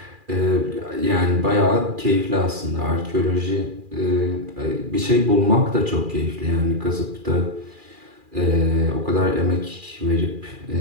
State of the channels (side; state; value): left; late; 2.4 ms